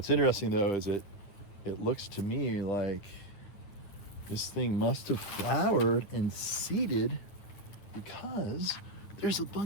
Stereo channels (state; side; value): late; right; 9.5 ms